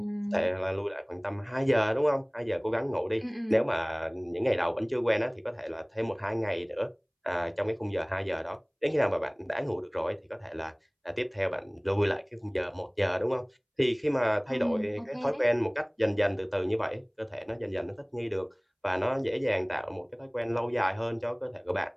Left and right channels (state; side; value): identical; both; correlation 1.00